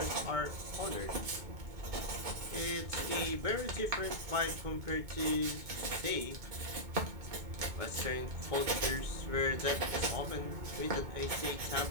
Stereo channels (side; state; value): left; late; 2.2 ms